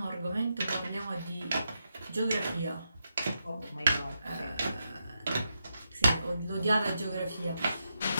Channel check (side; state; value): both; inverted; correlation -0.85